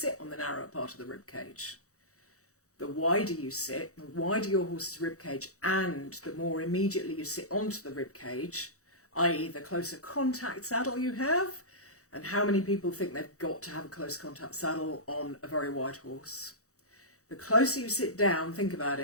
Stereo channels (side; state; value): right; late; 0.65 ms